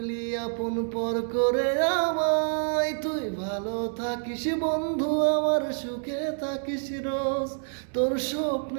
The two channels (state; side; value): silent; left; digital silence